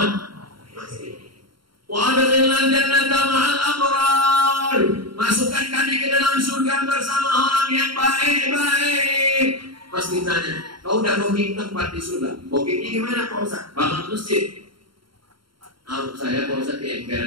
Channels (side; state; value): left; late; 0.73 ms